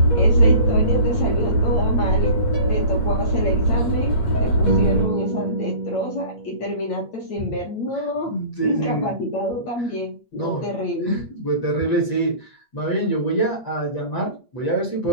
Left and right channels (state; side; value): late; right; 8.5 ms